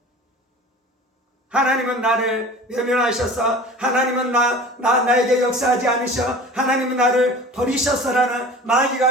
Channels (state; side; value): normal; both; correlation 0.40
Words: 하나님은 나를 외면하셔서, 하나님은 나에게 역사하지 않으셔, 하나님은 나를 버리셨어라는